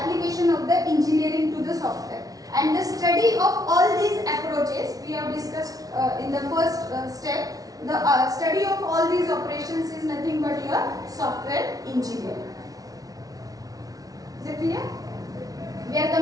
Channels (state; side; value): late; left; 0.18 ms